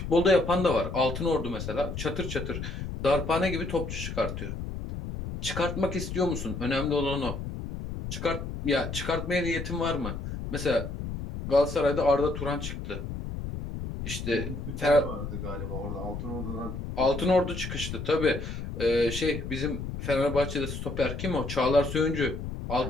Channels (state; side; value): noise; left; rumble, 6 dB below the sound